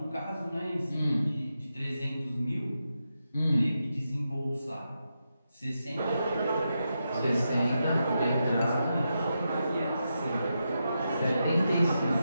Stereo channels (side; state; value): both; inverted; correlation -0.86